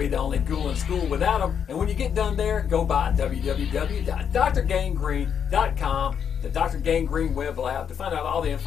the only ghoul in school without them. And when you get done there, go by www.drgangrene.com, the Dr. Gangrene web lab, to find out all the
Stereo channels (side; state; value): right; quieter; 7.8 dB